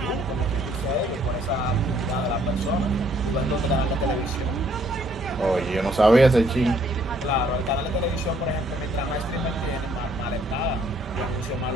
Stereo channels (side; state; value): both; normal; correlation 0.65